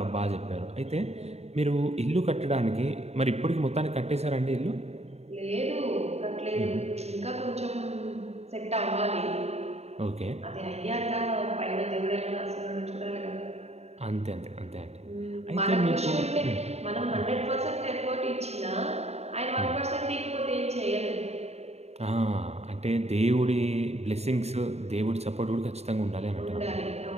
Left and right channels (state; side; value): late; left; 0.31 ms